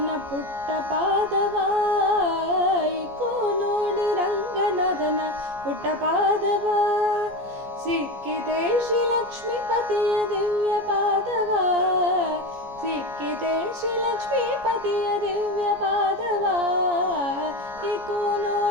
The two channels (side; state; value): left; late; 15 ms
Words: ಪುಟ್ಟ ಪಾದವ, ಇಕೋ ನೋಡಿ ರಂಗನಾಥನ ಪುಟ್ಟ ಪಾದವ. ಸಿಕ್ಕಿದೆ ಶ್ರೀಲಕ್ಷ್ಮೀಪತಿಯ ದಿವ್ಯ ಪಾದವ, ಸಿಕ್ಕಿದೆ ಶ್ರೀಲಕ್ಷ್ಮೀಪತಿಯ ದಿವ್ಯ ಪಾದವ. ಇಕೋ